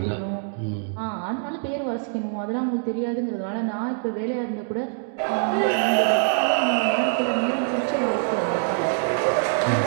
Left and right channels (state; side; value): silent; left; 62 dB below the other